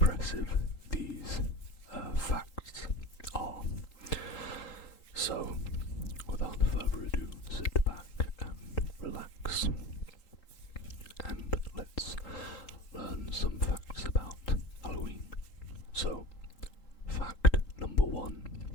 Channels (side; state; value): right; late; 3.8 ms